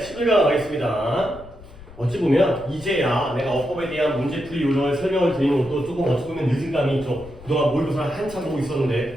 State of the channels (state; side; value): noise; left; rumble, 19 dB below the sound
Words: 11강 가겠습니다. 어찌 보면 이제야 내가 어법에 대한 문제풀이 요령을 설명을 드리는 것도 조금 어찌 보면 늦은 감이 있죠. 그동안 모의고사를 한참 보고